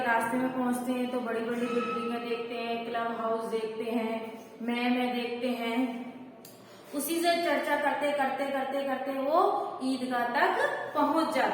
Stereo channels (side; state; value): both; identical; correlation 1.00